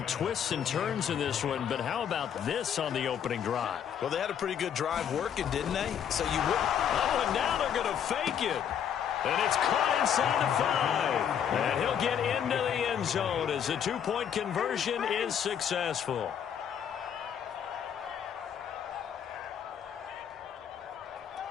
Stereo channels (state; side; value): quieter; right; 8.7 dB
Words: twists and turns in this one, but how about this on the opening drive? Well, they had a pretty good drive working, didn't they? So you wouldn't. Oh, and now they're going to fake it. And it's caught inside the 5. And he'll get into the end zone as the two-point conversion is successful.